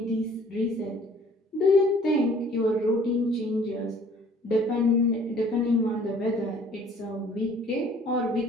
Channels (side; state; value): both; normal; correlation 0.55